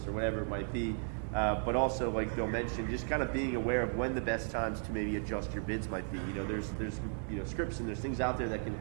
or whatever it might be. But also, like Bill mentioned, just kind of being aware of when the best times to maybe adjust your bids might be. You know, there's you know scripts and there's things out there that can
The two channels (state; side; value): silent; left; 54 dB below the other